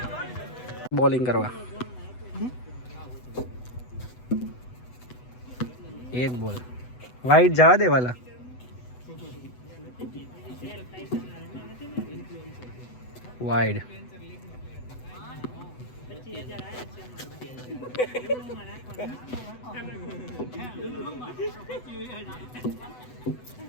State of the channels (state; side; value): late; right; 8.0 ms